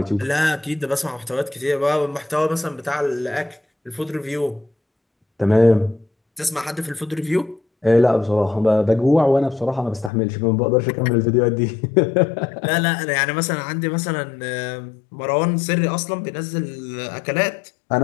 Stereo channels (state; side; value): drops out; right; at 10.1 s